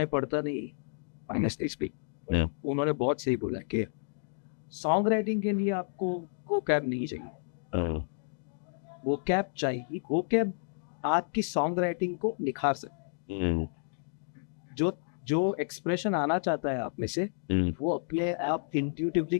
पढ़ता नहीं, ऑनेस्टली स्पीक. Yeah. उन्होंने बहुत सही बोला कि सॉन्ग राइटिंग के लिए आपको वोकैब नहीं चाहिए, वोकैब चाहिए. वोकैब आपकी सॉन्ग राइटिंग को निखार सकते. जो एक्सप्रेशन आना चाहता है आप में से, वो अपने आप इंट्यूटिवली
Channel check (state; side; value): silent; right; digital silence